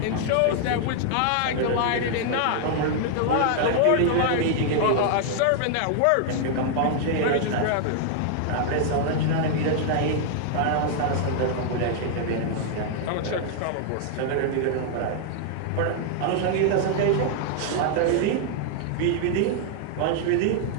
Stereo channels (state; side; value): different; both; correlation 0.00